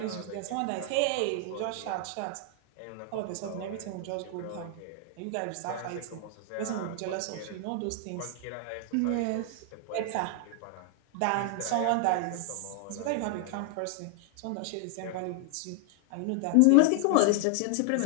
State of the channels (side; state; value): both; different; correlation 0.00